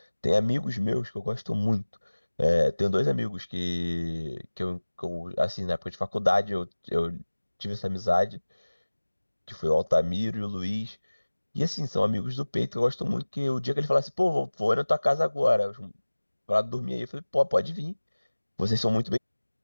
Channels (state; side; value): inverted; both; correlation -1.00